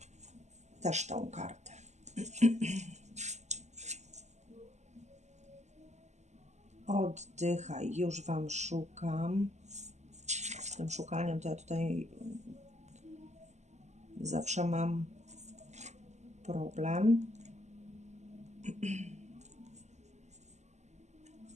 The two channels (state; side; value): late; left; 0.33 ms